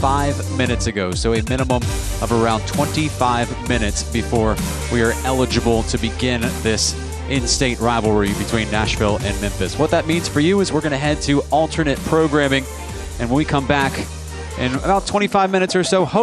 minutes ago, so a minimum of around 25 minutes before we are eligible to begin this in-state rivalry between Nashville and Memphis. What that means for you is we're going to head to alternate programming, and when we come back, in about 25 minutes or so,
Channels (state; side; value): identical; both; correlation 1.00